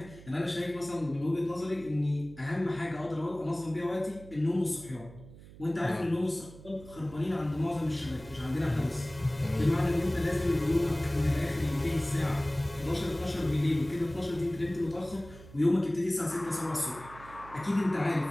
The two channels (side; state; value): right; noise; hum, 18 dB below the sound